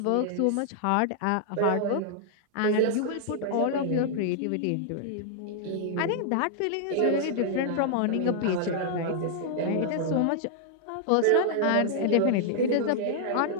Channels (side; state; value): both; different; correlation -0.01